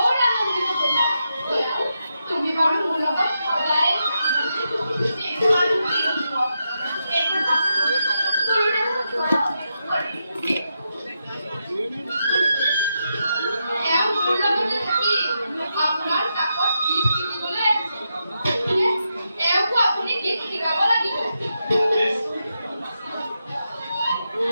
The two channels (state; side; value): inverted; both; correlation -0.85